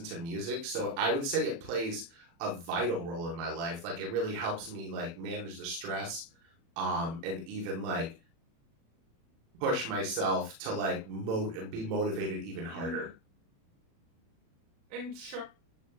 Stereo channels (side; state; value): left; late; 36 ms